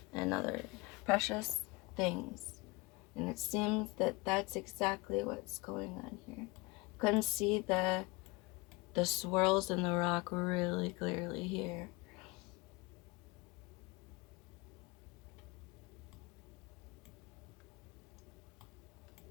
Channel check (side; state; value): right; quieter; 23.7 dB